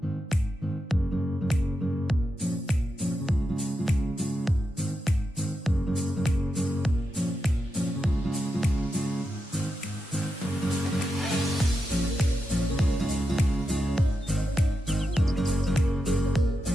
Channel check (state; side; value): normal; both; correlation 0.87